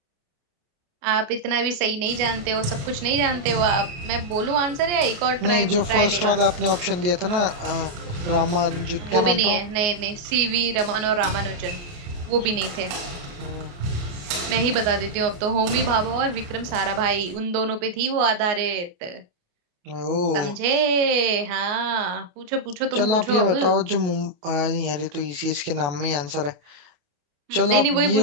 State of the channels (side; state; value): left; late; 29 ms